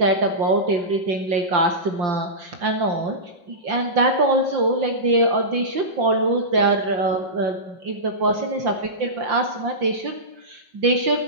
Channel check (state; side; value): late; left; 5.7 ms